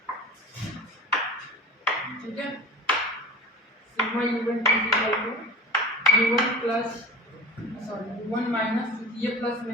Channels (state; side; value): normal; both; correlation 0.31